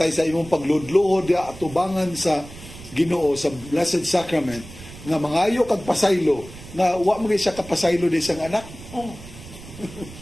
sa imong pagludluhod ya atubangan sa Ginoo sa Blessed Sacrament nga mangayo kag pasaylo nga wa mo siya kapasaylo di sang anak? Oh.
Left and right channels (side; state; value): right; noise; rumble, 16 dB below the sound